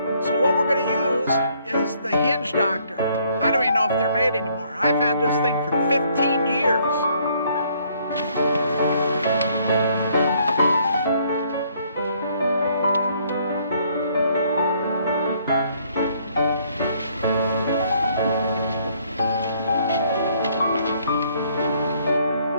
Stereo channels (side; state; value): both; inverted; correlation -0.65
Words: So what we're going to use is the hinge doctor. I don't even know if they're made anymore. I've had this thing for 15 years.